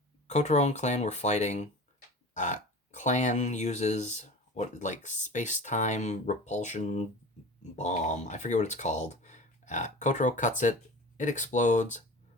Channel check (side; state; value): both; normal; correlation 0.36